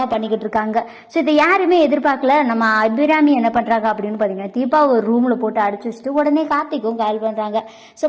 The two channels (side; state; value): both; identical; correlation 1.00